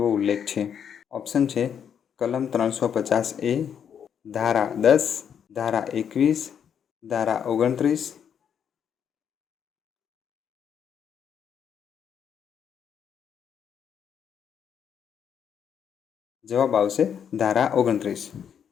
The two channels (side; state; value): right; quieter; 8.1 dB